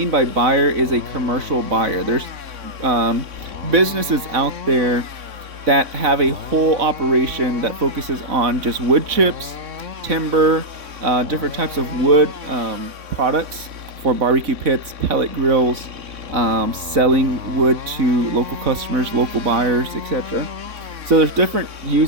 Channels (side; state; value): left; late; 3.6 ms